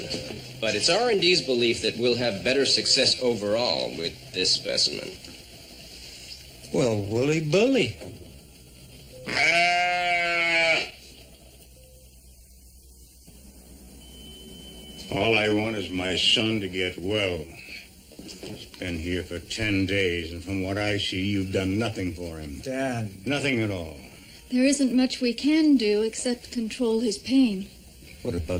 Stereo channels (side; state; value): both; identical; correlation 1.00